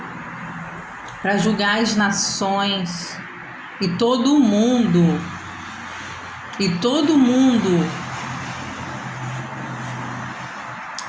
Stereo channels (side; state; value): both; identical; correlation 1.00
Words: para julgar as nações e todo mundo,